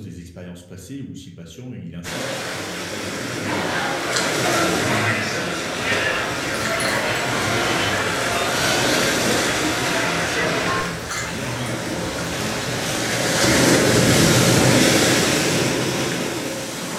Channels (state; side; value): identical; both; correlation 1.00